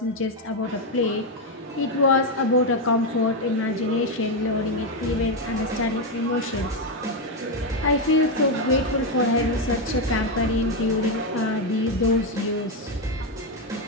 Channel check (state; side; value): normal; both; correlation 0.06